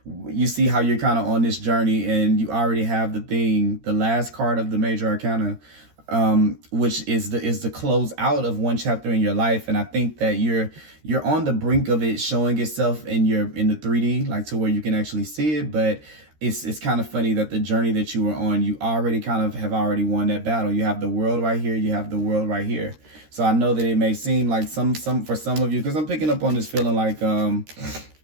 you see how you're kind of on this journey, and you already have the last card of the major arcana, which is the close out of one chapter in your life. And I think that you're on the brink of it showing itself in the 3D, like to where you can actually see it. But it's kind of funny that the journey that you were on, you already kind of have already won that battle. You have the world right here, you have the world right here. So I know that it may seem like some for some of you, because I'm picking up on this feeling like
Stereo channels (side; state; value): left; late; 13 ms